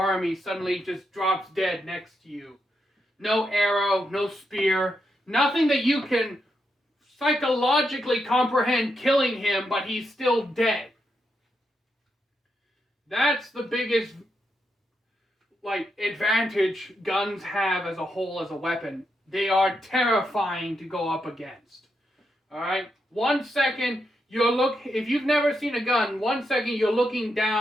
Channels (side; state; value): both; normal; correlation 0.83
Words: suddenly just drops dead next to you. No arrow, no spear, nothing that you can psychologically comprehend killing him, but he's still dead. That's the biggest advantage guns have as a whole as a weapon. They are terrifying to go up against. Alright? 1 second, if you've never seen a gun, 1 second you're looking